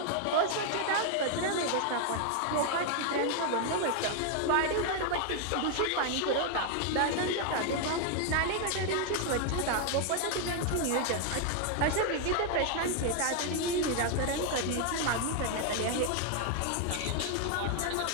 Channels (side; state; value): both; different; correlation 0.00